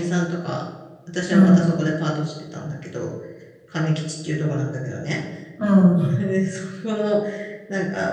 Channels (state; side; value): identical; both; correlation 1.00